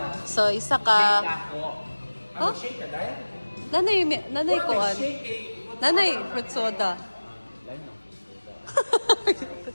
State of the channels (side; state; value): both; inverted; correlation -1.00